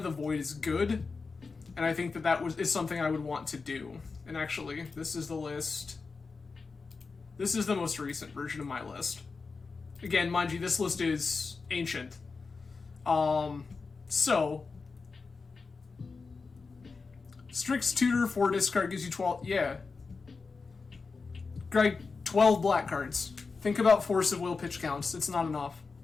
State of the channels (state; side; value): quieter; right; 4.5 dB